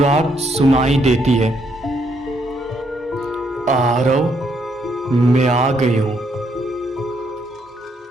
सुनाई देती है। आरव, मैं आ गई हूं।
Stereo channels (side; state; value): both; normal; correlation 0.73